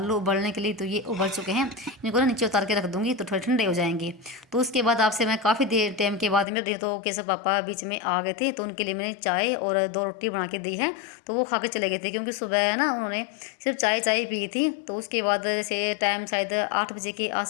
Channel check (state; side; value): drops out; right; at 6.5 s